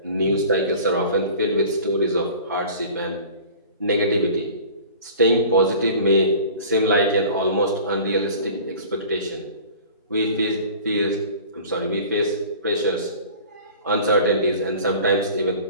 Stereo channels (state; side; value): inverted; both; correlation -0.43